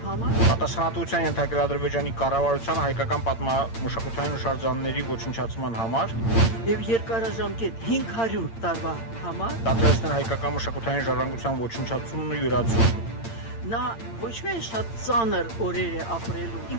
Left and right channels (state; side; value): late; right; 8.8 ms